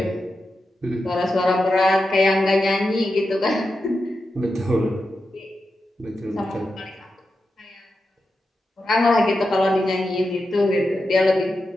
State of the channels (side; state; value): both; normal; correlation 0.89